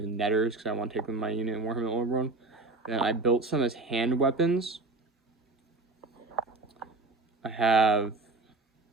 netters because I want to take them in my unit in Warhammer Old World. Then I built some as hand weapons. I have a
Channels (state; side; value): quieter; left; 3.3 dB